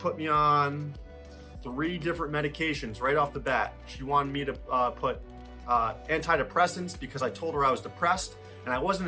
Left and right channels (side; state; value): both; identical; correlation 1.00